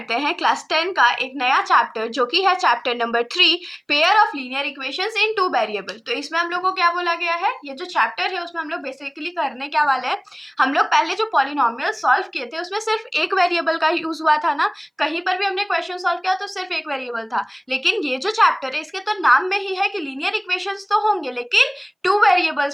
हैं क्लास 10 का एक नया चैप्टर जो कि है chapter number 3 pair of linear equations in two variable. तो इसमें हम लोग को क्या बोला गया है, ये जो चैप्टर है उसमें हम लोग बेसिकली करने क्या वाले हैं। हम लोग पहले जो पॉलिनोमियल सॉल्व किए थे उसमें सिर्फ एक वेरिएबल का यूज हुआ था ना, कहीं पर भी हमने क्वेश्चन सॉल्व किया तो सिर्फ एक वेरिएबल था। लेकिन ये जो चैप्टर है इसके तो नाम में ही है कि लीनियर इक्वेशंस तो होंगे लेकिन टू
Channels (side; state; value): both; identical; correlation 1.00